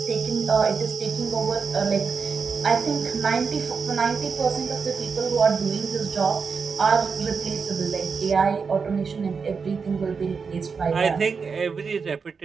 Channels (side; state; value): left; quieter; 5.4 dB